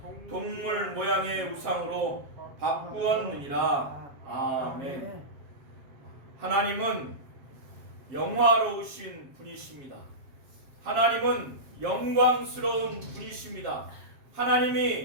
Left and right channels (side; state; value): left; late; 7.4 ms